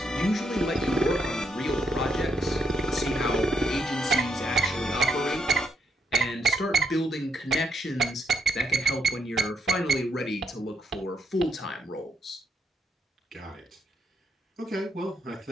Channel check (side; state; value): both; normal; correlation 0.78